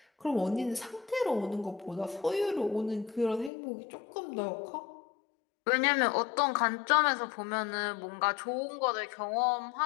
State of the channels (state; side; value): drops out; right; at 3.5 s